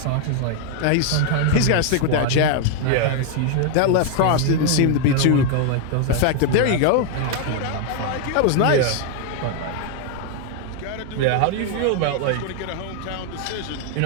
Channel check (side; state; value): both; different; correlation 0.00